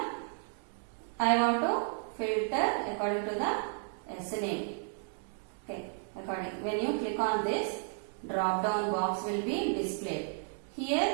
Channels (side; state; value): left; silent; 56 dB below the other